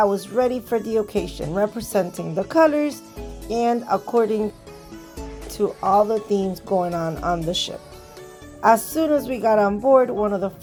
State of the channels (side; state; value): both; identical; correlation 1.00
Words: was ready for the occasion, representing the colors and according to all the themes going on the ship. As soon as we got on board, one of the